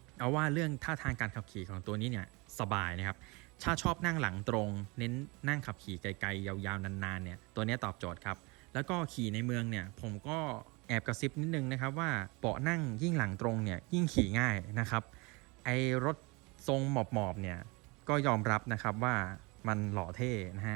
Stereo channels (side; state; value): left; quieter; 27.1 dB